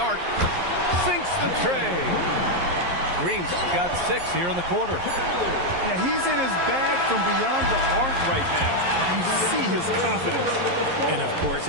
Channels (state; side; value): late; left; 11 ms